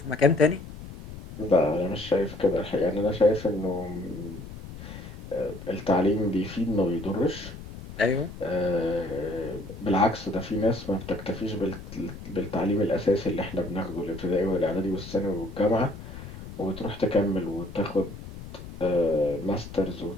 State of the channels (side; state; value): left; noise; rumble, 13 dB below the sound